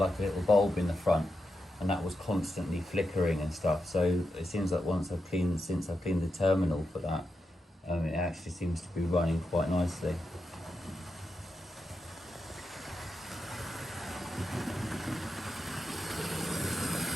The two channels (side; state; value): both; normal; correlation 0.86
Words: a little bulb in the front, and that was constantly flickering and stuff. So it seems like since I've cleaned the terminal for that, it actually seems to be running quite nicely.